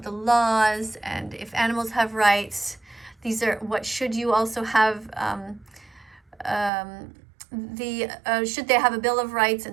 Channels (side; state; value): left; drops out; at 6.7 s